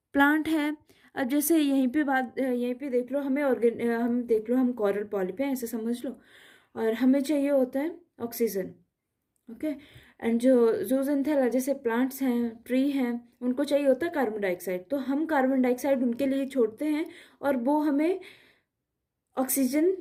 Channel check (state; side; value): identical; both; correlation 1.00